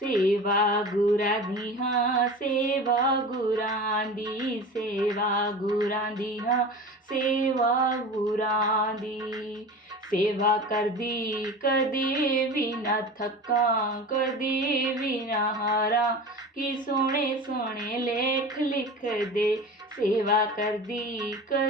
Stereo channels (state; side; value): normal; both; correlation 0.34